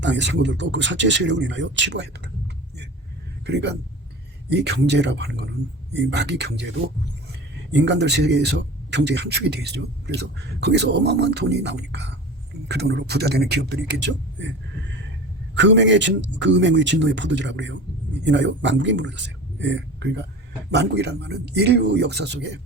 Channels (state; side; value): normal; both; correlation 0.35